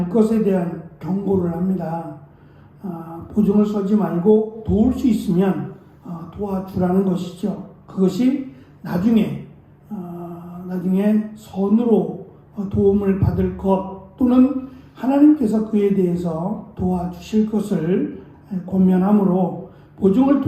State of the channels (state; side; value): identical; both; correlation 1.00